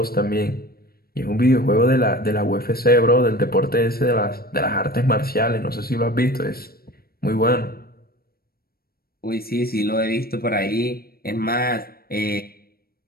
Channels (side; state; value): right; late; 0.44 ms